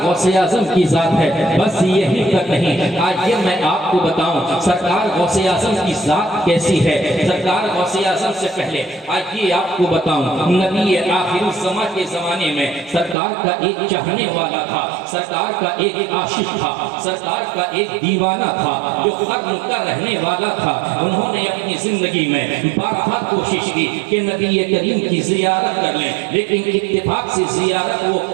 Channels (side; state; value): left; drops out; at 13.2 s